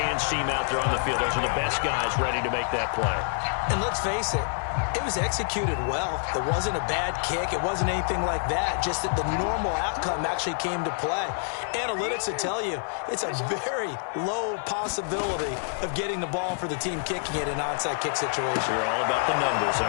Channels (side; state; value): right; silent; digital silence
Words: team out there on the field. Those are the best guys ready to make that play. And let's face it, it was executed well. It wasn't a bad kick. It wasn't anything like that. Just that the normal outcome actually came to play. Analytics will tell you it's a very low possibility of getting the ball for the team kicking it in an onside kick situation. You're all about the numbers,